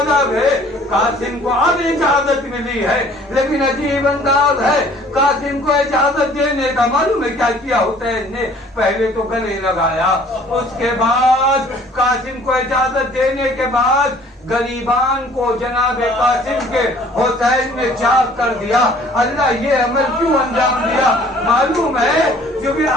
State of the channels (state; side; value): normal; both; correlation 0.54